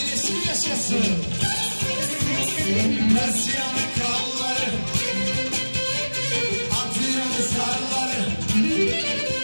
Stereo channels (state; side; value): inverted; both; correlation -1.00